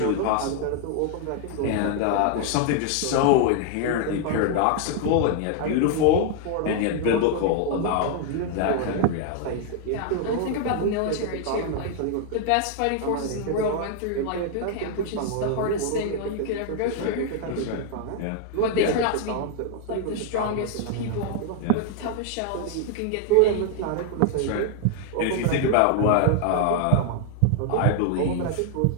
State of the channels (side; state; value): both; different; correlation 0.00